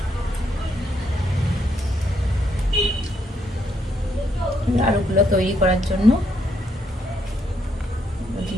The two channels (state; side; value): normal; both; correlation 0.75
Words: আলুগুলো তৈরি করার জন্য